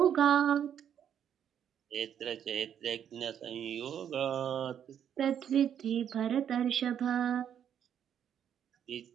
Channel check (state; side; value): quieter; left; 9.1 dB